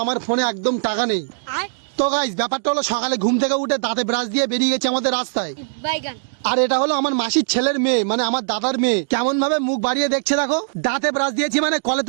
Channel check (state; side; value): silent; left; digital silence